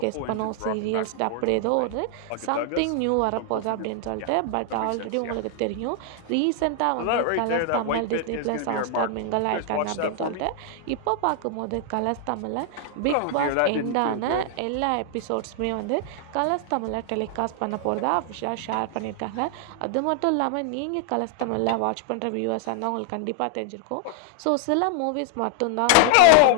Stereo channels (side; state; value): both; different; correlation 0.00